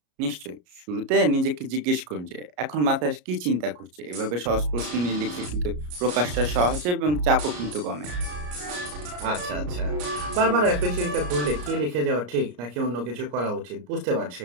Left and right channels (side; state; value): left; late; 33 ms